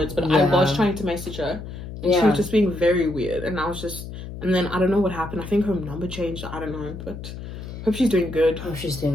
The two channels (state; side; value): noise; left; hum, 10 dB below the sound